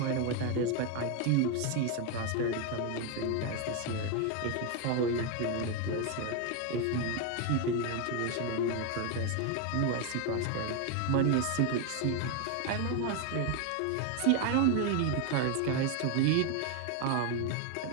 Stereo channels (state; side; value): different; both; correlation 0.01